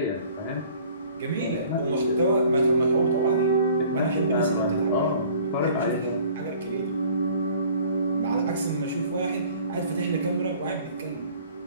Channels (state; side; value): inverted; both; correlation -0.52